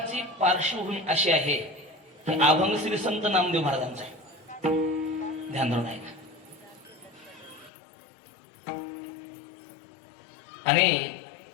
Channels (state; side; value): drops out; right; at 7.7 s